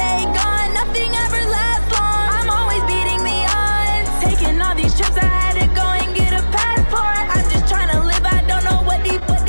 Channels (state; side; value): inverted; both; correlation -1.00